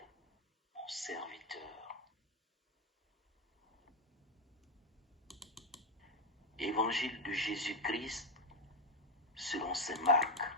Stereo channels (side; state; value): both; normal; correlation 0.04